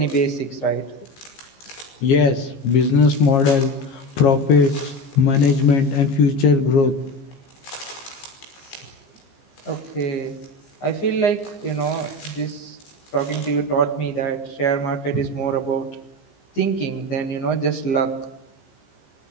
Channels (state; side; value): late; right; 15 ms